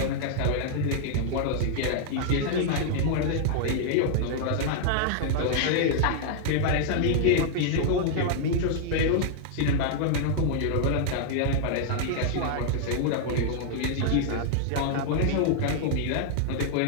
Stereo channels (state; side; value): different; both; correlation -0.01